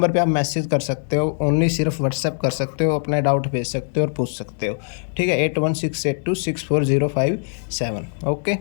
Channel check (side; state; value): right; silent; 65 dB below the other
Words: पे आप मैसेज कर सकते हो, ओनली सिर्फ व्हाट्सएप कर सकते हो, अपना डाउट भेज सकते हो और पूछ सकते हो। ठीक है, 8168264057। ओके,